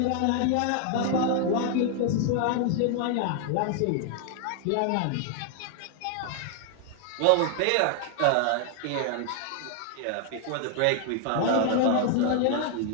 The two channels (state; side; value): different; both; correlation 0.00